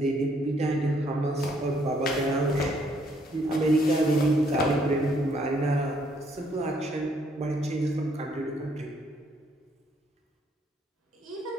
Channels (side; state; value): both; normal; correlation 0.68